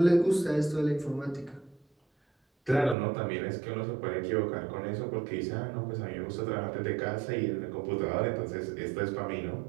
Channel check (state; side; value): drops out; left; at 3.0 s